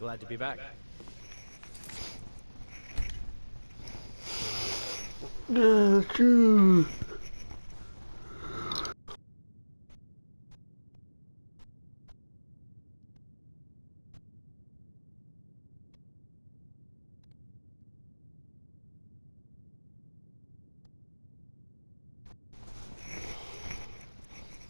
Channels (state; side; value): inverted; both; correlation -1.00